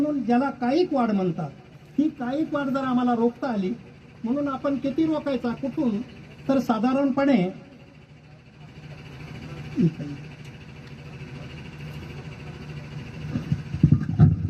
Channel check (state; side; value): identical; both; correlation 1.00